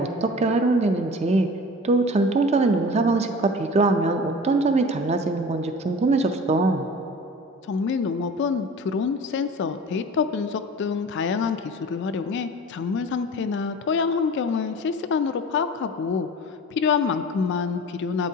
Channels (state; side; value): normal; both; correlation 0.39